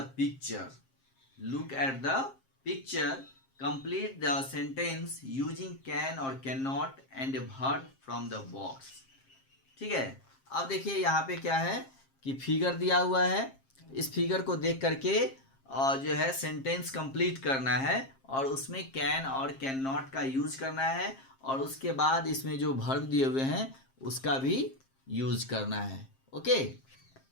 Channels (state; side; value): late; right; 7.5 ms